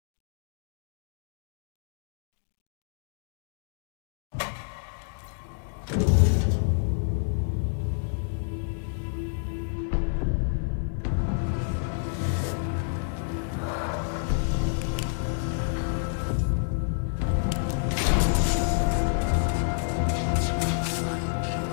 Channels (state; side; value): silent; right; digital silence